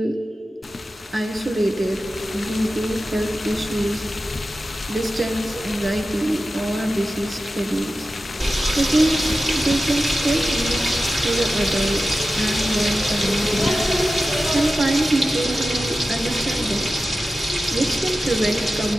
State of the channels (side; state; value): both; normal; correlation 0.93